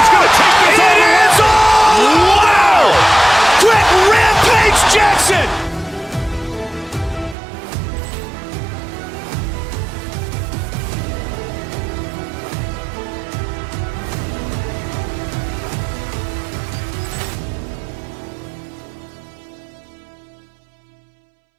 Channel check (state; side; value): drops out; left; at 7.4 s